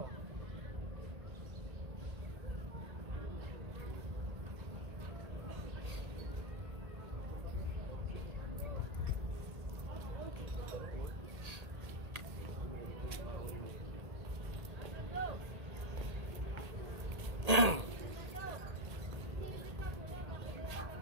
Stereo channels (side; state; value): left; late; 1.8 ms